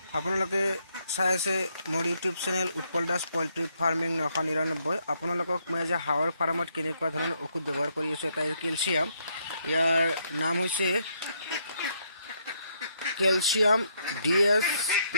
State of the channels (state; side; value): inverted; both; correlation -0.74